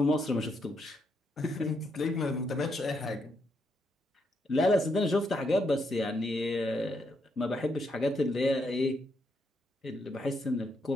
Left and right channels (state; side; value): normal; both; correlation 0.78